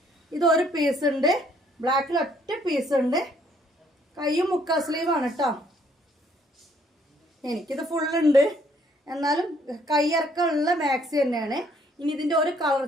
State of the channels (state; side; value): normal; both; correlation 0.65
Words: ഇത് ഒരു പീസ് ഉണ്ട്, ബ്ലാക്കിൽ ഒറ്റ പീസ് ഉണ്ട്. കൈയും മുക്കാ സ്ലീവാണ് കേട്ടോ. എനിക്കിത് ഫുള്ളുണ്ട്, എന്നാലും കൈയിറക്കമുള്ള മാക്സി തന്നെയാണ്. ഇനി ഇതിൻ്റെ ഒരു കളർ